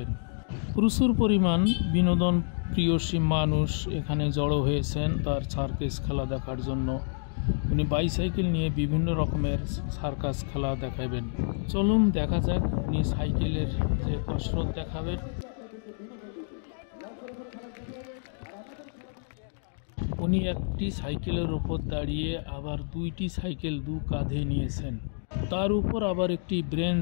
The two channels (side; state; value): right; silent; digital silence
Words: প্রচুর পরিমাণ বিনোদন প্রিয়সী মানুষ এখানে জড়ো হয়েছেন তার সার্কাস খেলা দেখার জন্য। উনি বাইসাইকেল নিয়ে বিভিন্ন রকমের সার্কাস খেলা দেখাবেন। চলুন দেখা যাক উনি সাইকেলের যে কসরত দেখাবেন। উনি একটি সাইকেলের উপর দাঁড়িয়ে আবার দুইটি সাইকেল দু কাঁধে নিয়েছেন, তার উপর আবার একটি